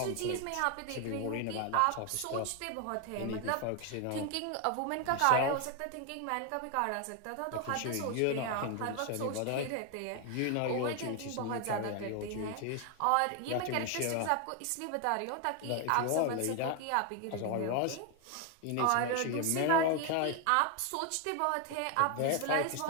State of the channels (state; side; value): different; both; correlation 0.01